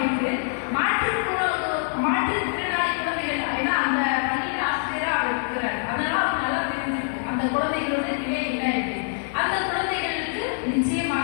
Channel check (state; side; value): silent; right; 62 dB below the other